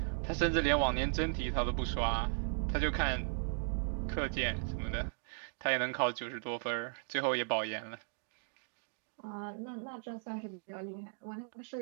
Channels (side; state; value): left; silent; digital silence